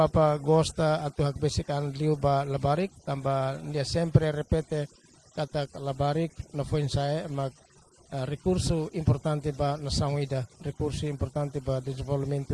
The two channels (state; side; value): identical; both; correlation 1.00